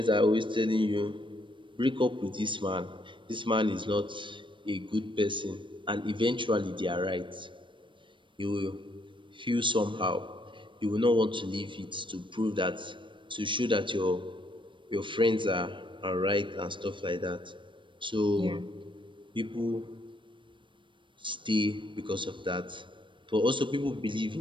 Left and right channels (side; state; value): left; late; 0.24 ms